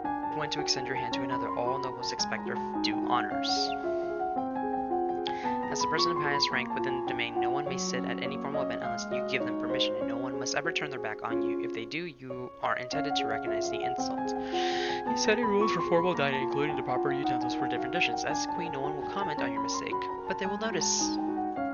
when to extend your hand to another. All nobles expect their due honors. As the person of highest rank within the domain, no one may sit at any formal event unless you give them permission, and no one must ever turn their back on you. If they do, you are intended to recognize the insult. You set rules for formal dining, including the proper utensils for different dishes. As queen, no one will comment on your mistake, but they will notice.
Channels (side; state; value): both; identical; correlation 1.00